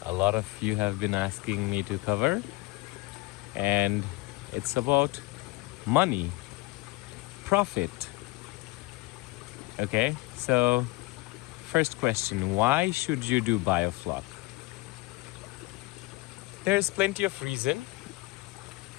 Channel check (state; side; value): quieter; right; 22.4 dB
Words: a lot of you have been asking me to cover, and it's about money, profit. Okay, so first question, why should you do Biofloc? There's plenty of reason.